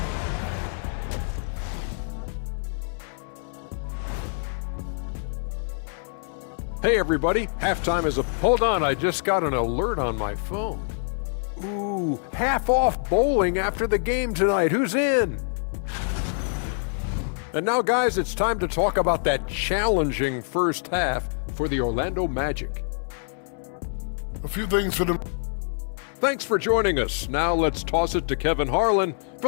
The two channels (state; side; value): silent; right; 61 dB below the other